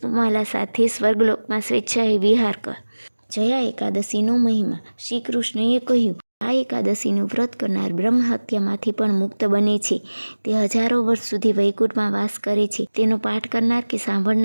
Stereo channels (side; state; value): both; inverted; correlation -1.00